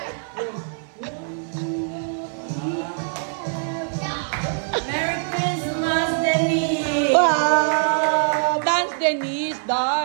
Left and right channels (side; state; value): left; silent; 61 dB below the other